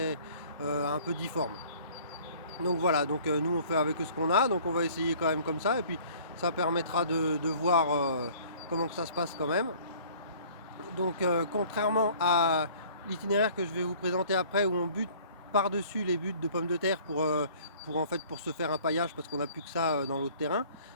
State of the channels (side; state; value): both; inverted; correlation -0.52